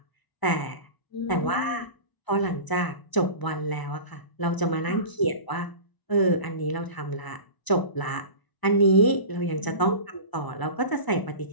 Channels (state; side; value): late; right; 1.0 ms